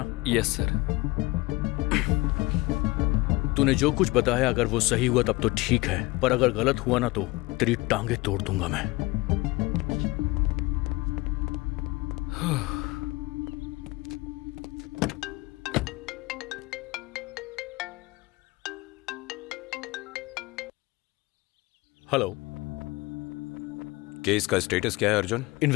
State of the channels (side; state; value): right; quieter; 21.8 dB